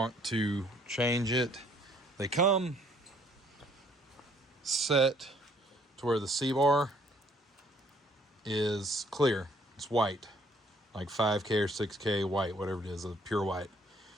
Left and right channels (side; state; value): both; normal; correlation 0.62